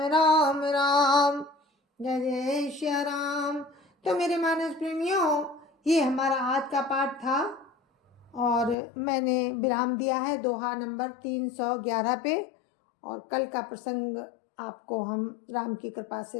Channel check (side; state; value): right; drops out; at 8.8 s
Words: राम। जय जय श्री राम। तो मेरे मानस प्रेमियों, ये हमारा आज का पाठ था और मैंने विराम दिया है दोहा नंबर 311 पे, और कल का प्रसंग आपको हम राम की कृपा